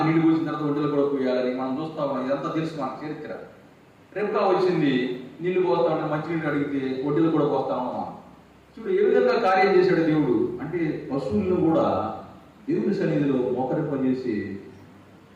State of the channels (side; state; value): both; identical; correlation 1.00